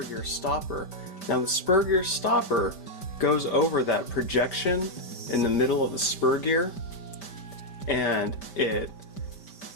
gear stopper. Now the spur gear stopper goes over that projection in the middle of the spur gear, and it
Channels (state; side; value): late; right; 5.1 ms